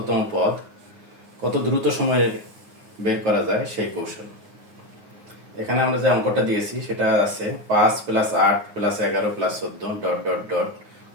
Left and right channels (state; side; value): late; left; 9.6 ms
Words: পদ কত দ্রুত সময়ে বের করা যায় সেই কৌশল। এখানে আমরা যে অঙ্কটা দিয়েছি সেটা আছে 5 + 8 + 11 + 14 ডট ডট ডট